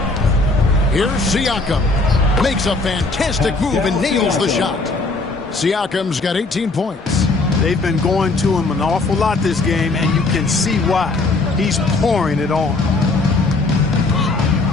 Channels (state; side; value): quieter; right; 3.4 dB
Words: Here's Siakam. Makes a fantastic move and nails the shot. Siakam's got 18 points. They've been going to him an awful lot this game, and you can see why. He's pouring it on.